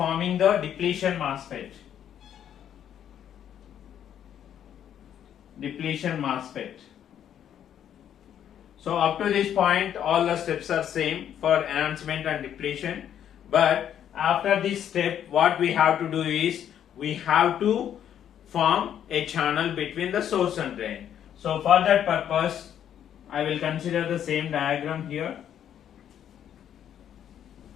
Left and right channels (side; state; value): right; quieter; 9.8 dB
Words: the depletion MOSFET, so up to this point all the steps are same for enhancement and depletion, but after this step what we have to do is we have to form a channel between the source and drain. So for that purpose, I will consider the same diagram here.